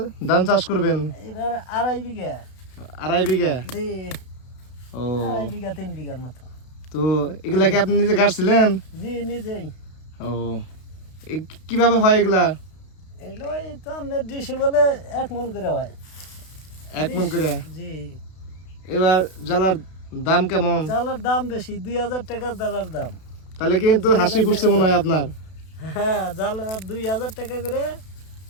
ধান চাষ করবেন? এবার 2.5 বিঘা। 2.5 বিঘা। জি, ও 2.5 বিঘা 3 বিঘার মতো। তো এগুলা কি আপনি নিজে গাড়ছিলেন? জি, নিজেই। ও কিভাবে হয় এগুলা? এলো এই তো আমাদের ডিসি বলে 1 মন করে হয়। 1 মণ করে। জি, এবার জ্বালার দাম কেমন? জ্বালার দাম বেশি, 2000 টাকা জ্বালার দাম। তাহলে কিন্তু হাসি ফুটছে মনে হয় আপনার। হ্যাঁ, জ্বালা 2000 টাকা করে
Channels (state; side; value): late; right; 32 ms